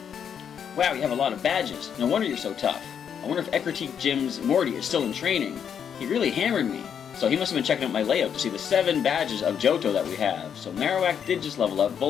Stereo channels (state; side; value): quieter; right; 8.0 dB